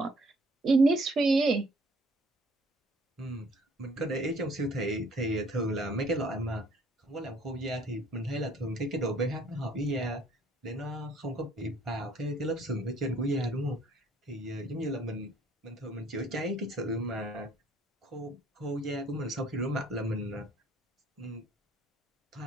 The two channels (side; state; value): both; normal; correlation 0.60